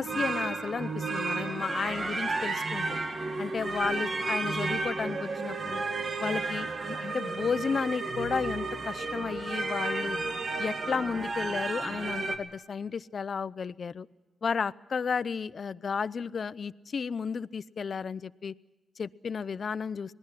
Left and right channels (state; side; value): normal; both; correlation 0.84